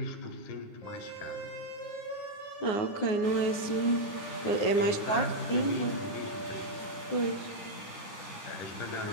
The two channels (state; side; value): late; right; 9.8 ms